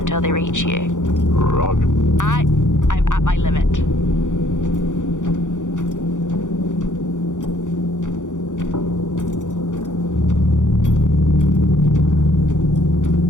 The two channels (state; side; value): late; right; 0.86 ms